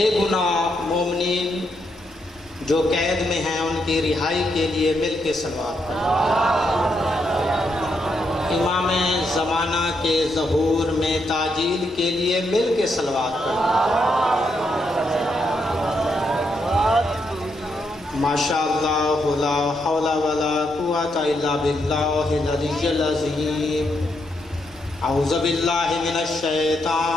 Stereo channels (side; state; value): both; normal; correlation 0.79